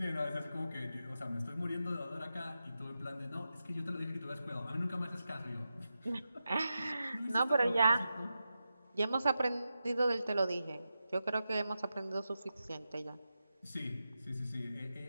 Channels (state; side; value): inverted; both; correlation -0.90